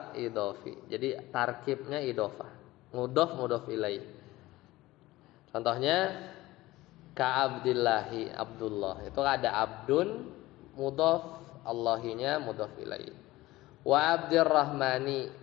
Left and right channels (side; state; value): right; quieter; 18.1 dB